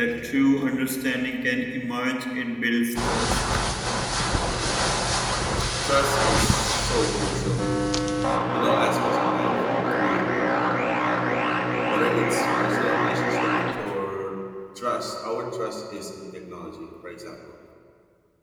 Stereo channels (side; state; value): both; identical; correlation 1.00